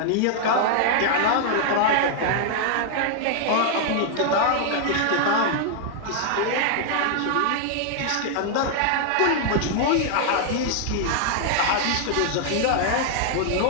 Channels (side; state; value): both; different; correlation 0.00